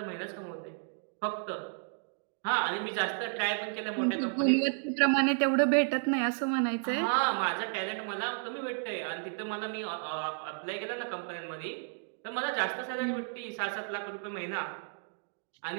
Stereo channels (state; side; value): silent; left; 56 dB below the other